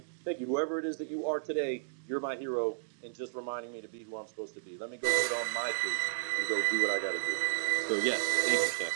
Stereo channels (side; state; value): left; silent; digital silence